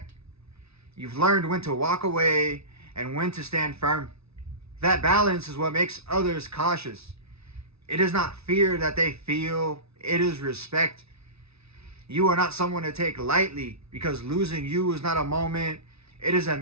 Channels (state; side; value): late; left; 0.79 ms